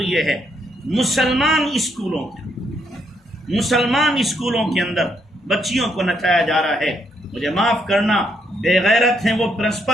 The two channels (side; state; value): both; normal; correlation 0.75